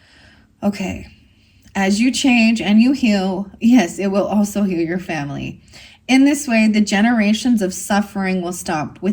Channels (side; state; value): both; identical; correlation 1.00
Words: Okay. As you change and you heal, yes, it will also heal your family. In this way, the generations of suffering will stop